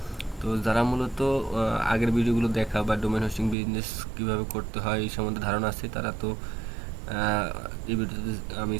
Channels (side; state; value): left; drops out; at 3.6 s